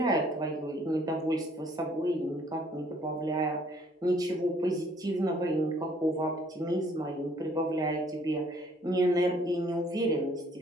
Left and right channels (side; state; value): both; normal; correlation 0.61